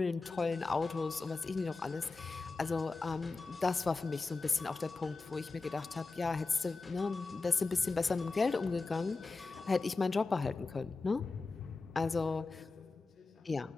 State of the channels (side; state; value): right; quieter; 3.8 dB